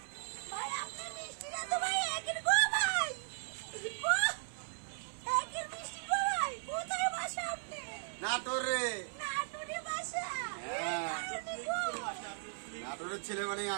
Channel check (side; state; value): left; silent; 53 dB below the other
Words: ভাই আপনার মিষ্টিটা তো ভাই একের গো ভাই, একের মিষ্টি গো ভাই। কোথায় বাসা আপনি? নাটোরে। নাটোরে বাসা? নাটোরের ছেলে মানে